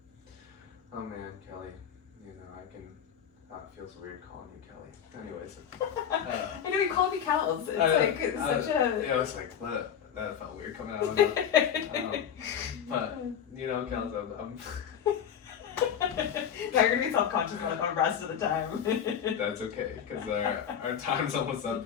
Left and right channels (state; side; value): quieter; right; 8.5 dB